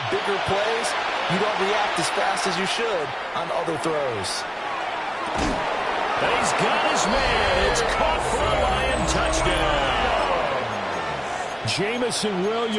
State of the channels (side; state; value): both; identical; correlation 1.00